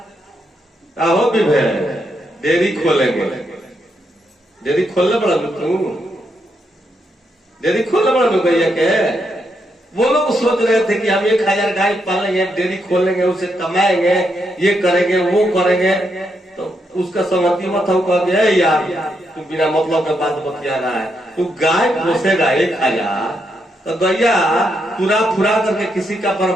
हो भी डेयरी खोलेंगे। डेयरी खोलने पड़ा तू, डेयरी खोलने पड़ा भैया के। वो लोग सोच रहे थे कि हम 1000 गाय पालेंगे, डेयरी खोलेंगे, उसे कमाएंगे, ये करेंगे वो करेंगे। तो उसका सहमति मत हो, कह गया यार तू बिना मतलब का बात बतिया रहा है। तू गाय पोसेगा 1000 तो गैया पूरा फुरा करके किसी का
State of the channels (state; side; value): normal; both; correlation 0.80